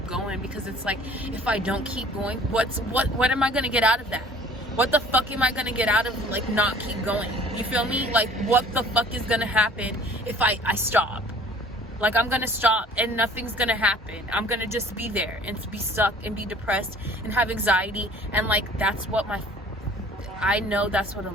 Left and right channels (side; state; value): both; normal; correlation 0.51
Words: going, because it's like, if I don't keep going, what am I gonna get out of that? What the fuck am I gonna get out of like not keep going? You feel me? Like, what the fuck is gonna happen if I stop? Like, I'm gonna stop and nothing's gonna happen. I'm gonna just be there and be stuck and be depressed and have anxiety. And like, that's what I know that's what a